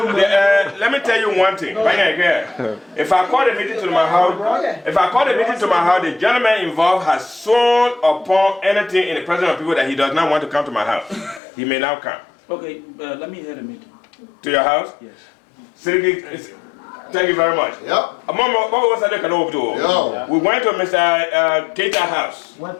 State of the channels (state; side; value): drops out; right; at 11.4 s